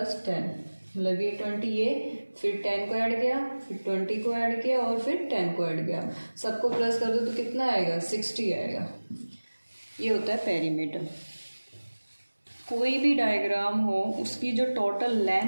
10, मतलब ये 20, ये फिर 10 को ऐड किया, फिर 20 को ऐड किया और फिर 10 को ऐड किया, सबको प्लस कर दो तो कितना आएगा, 60 आएगा। ये होता है पेरीमीटर। कोई भी डायग्राम हो उसकी जो टोटल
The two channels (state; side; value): inverted; both; correlation -1.00